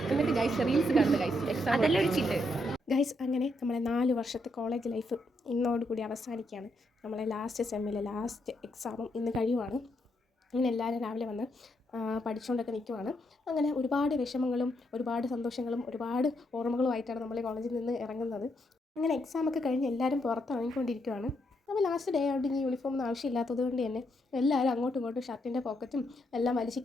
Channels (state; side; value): normal; both; correlation 0.78